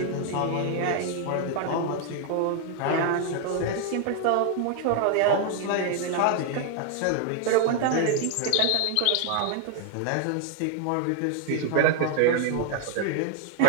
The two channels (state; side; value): different; both; correlation 0.00